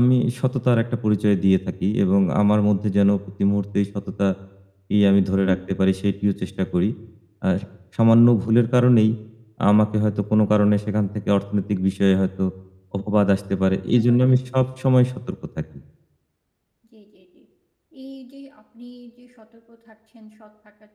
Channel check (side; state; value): both; identical; correlation 1.00